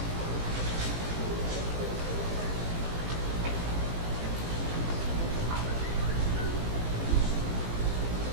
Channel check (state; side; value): late; left; 18 ms